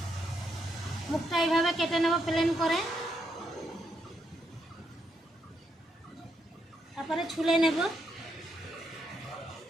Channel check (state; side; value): normal; both; correlation 0.79